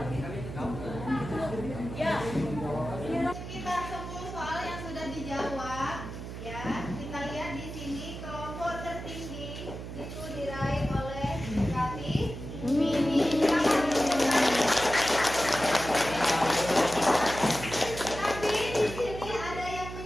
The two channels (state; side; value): noise; right; hum, 9 dB below the sound